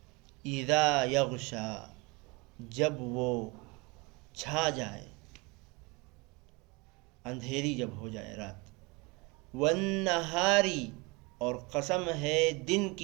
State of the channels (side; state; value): left; quieter; 26.5 dB